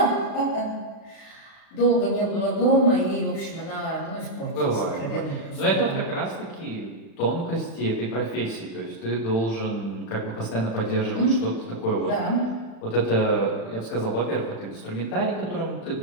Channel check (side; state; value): right; late; 35 ms